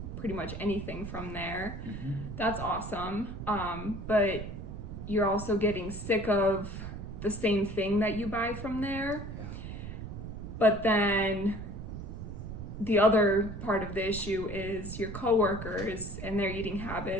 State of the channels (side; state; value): right; noise; rumble, 8 dB below the sound